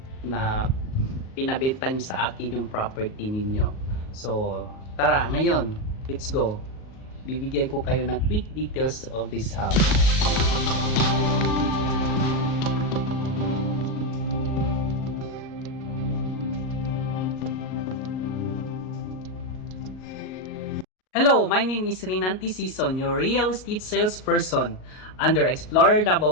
na pinabenta niyo sa akin yung property ninyo. So, tara, ngayon, let's go. Bibigyan ko kayo ng quick details of this house. Hello, my name is Rinanti Sison, your real estate salesperson under Explorer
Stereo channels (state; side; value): late; right; 38 ms